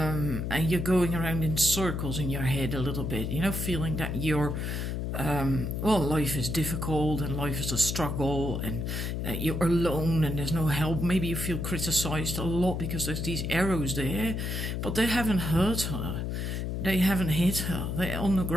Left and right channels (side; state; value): left; noise; hum, 2 dB below the sound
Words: you're going around in circles in your head a little bit, you know, feeling that you're well, life is difficult and life is a struggle, and you're alone and there's no help. Maybe you feel criticized a lot because there's these arrows there, but they haven't hurt her, they haven't hit her, they're on the